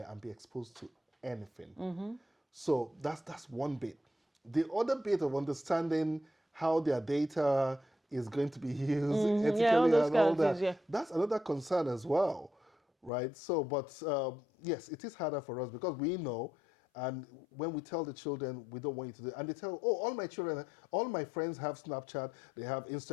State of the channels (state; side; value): drops out; right; at 13.1 s